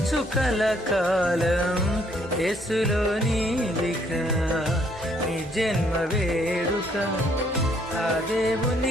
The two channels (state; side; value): normal; both; correlation 0.67